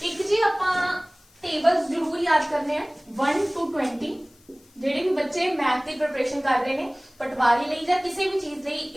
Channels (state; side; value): noise; left; hiss, 30 dB below the sound